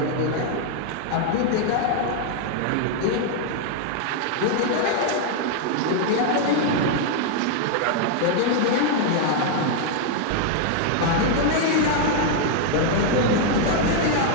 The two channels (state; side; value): different; both; correlation 0.00